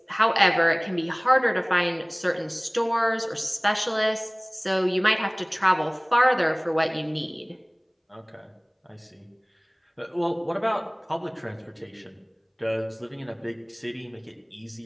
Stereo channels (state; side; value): identical; both; correlation 1.00